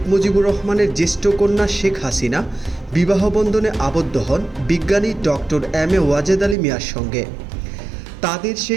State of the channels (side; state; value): left; drops out; at 6.6 s